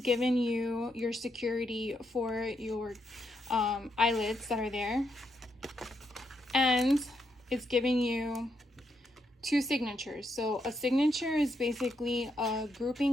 you your security for your eyelets that are there. And it's giving you two signatures. So a signature is basically a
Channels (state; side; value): normal; both; correlation 0.80